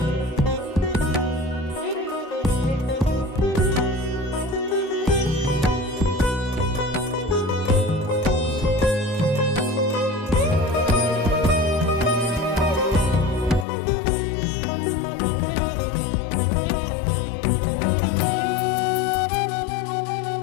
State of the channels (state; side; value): drops out; right; at 13.7 s